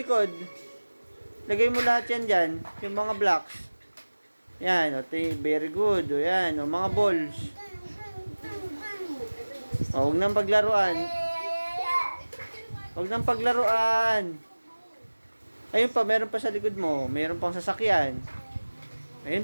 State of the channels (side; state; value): both; inverted; correlation -1.00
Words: Lagay mo lahat yan dyan. Yung mga blocks. Yan, okay, very good. O yan, o mga balls. O, huwag nang paglaruan. Ayun pa, meron pa sa likod mo. Meron pang sasakyan. Ayun